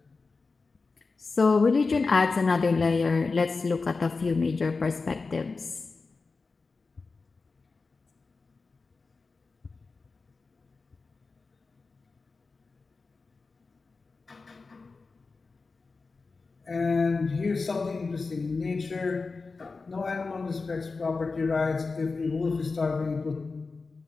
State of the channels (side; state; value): right; quieter; 4.1 dB